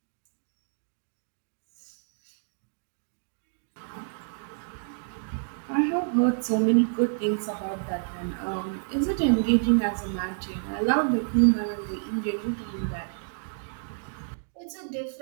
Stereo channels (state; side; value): silent; left; digital silence